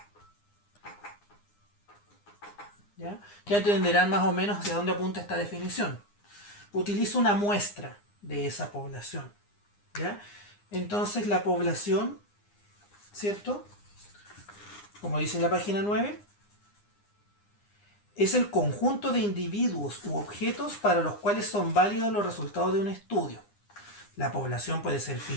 ya entenderán más o menos hacia dónde apunta esta definición. Utilizo una muestra de esa población, ¿ya? Entonces la población, ¿cierto? Como dice en la página 9, es el conjunto de individuos u objetos para los cuales son válidos los resultados de un estudio. La población puede ser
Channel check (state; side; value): late; right; 9.8 ms